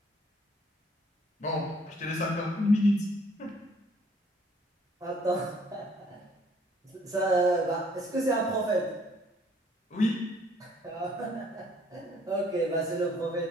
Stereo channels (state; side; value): normal; both; correlation 0.61